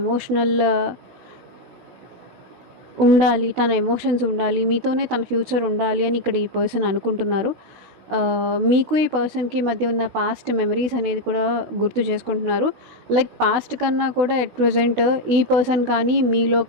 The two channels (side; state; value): left; late; 16 ms